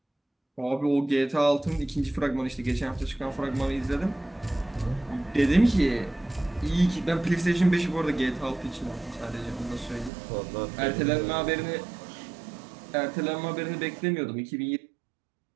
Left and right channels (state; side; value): drops out; left; at 10.1 s